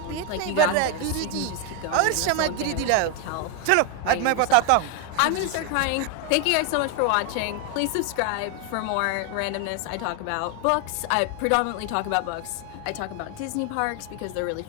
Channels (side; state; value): both; different; correlation 0.01